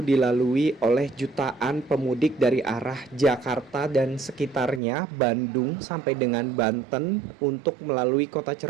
dilalui oleh jutaan pemudik dari arah Jakarta dan sekitarnya, Bandung sampai dengan Banten untuk melalui kota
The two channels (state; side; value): drops out; left; at 4.8 s